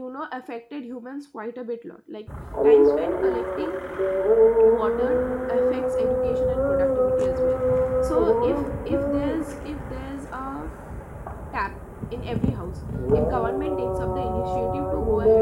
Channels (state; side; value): identical; both; correlation 1.00